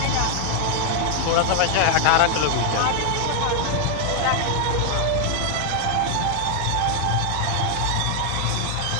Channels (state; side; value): different; both; correlation 0.00